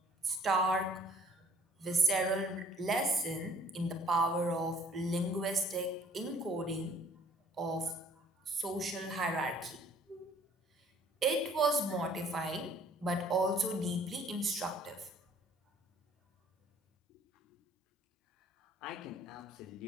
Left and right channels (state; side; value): normal; both; correlation 0.56